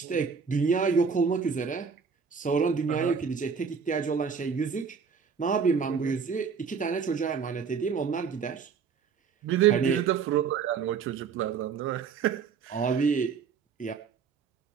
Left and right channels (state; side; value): quieter; left; 6.1 dB